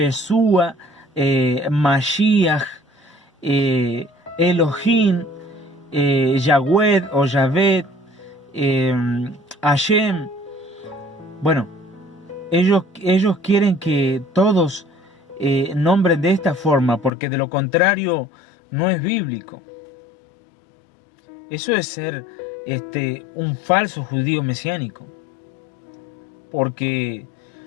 Mashiach, Elohim, Yahweh o Yahvé, Hashem. Bueno, ellos quieren que todos nombren de esta forma, porque de lo contrario no es bíblico. Eso es ser un falso judío mesiánico, porque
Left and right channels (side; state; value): right; drops out; at 17.1 s